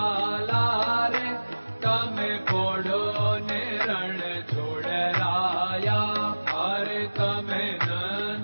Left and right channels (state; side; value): inverted; both; correlation -1.00